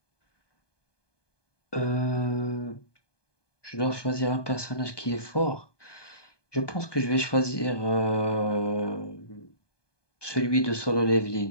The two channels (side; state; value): right; late; 1.2 ms